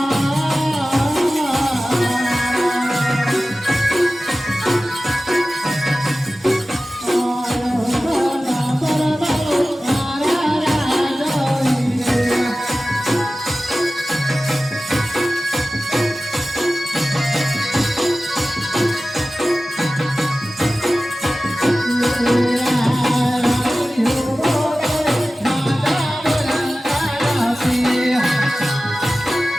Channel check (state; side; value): normal; both; correlation 0.96